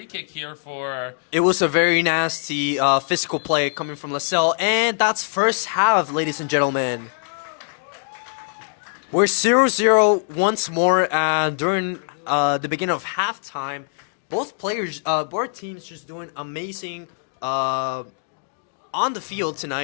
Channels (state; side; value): silent; right; digital silence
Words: kick here for... It was a very nasty physical play coming from LaSalle, and that's first half, ladies and gentlemen. We're 0-0 once more during the beginning of halftime. Both teams just doing amazing on the field